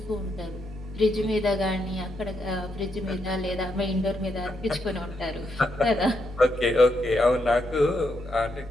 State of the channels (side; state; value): both; normal; correlation 0.80